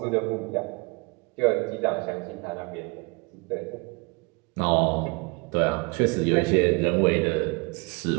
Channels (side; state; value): left; quieter; 29.8 dB